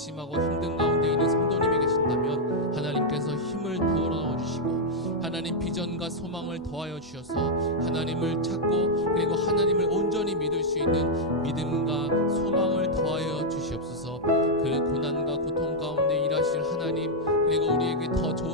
힘든 가운데 있는 성도님이 계신다면 하나님께서 힘을 부어 넣어주시고 하나님 비전과 소망을 더하여 주셔서 하나님을 찾고 그리고 하나님을 온전히 믿을 수 있는 믿음과 소망을 더하여 주시옵소서. 그 고난과 고통 가운데 일하실 하나님 그리고 우리에게 더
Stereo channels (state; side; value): normal; both; correlation -0.02